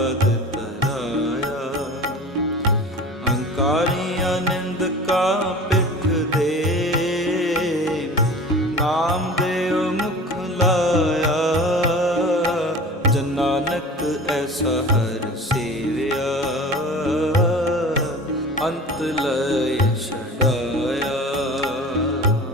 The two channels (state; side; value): normal; both; correlation 0.38